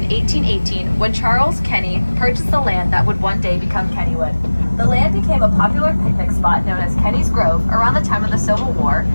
1818 when Charles Kenny purchased the land that would one day become Kennywood. The land became a popular picnic spot known as Kenny's Grove around the time of the Civil War,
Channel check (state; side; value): inverted; both; correlation -1.00